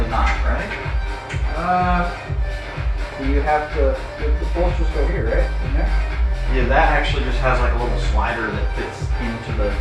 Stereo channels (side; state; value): both; identical; correlation 1.00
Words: not, right? You have to, the bolsters go here, right? In there? Yeah, that actually just has like a little slider that fits into the...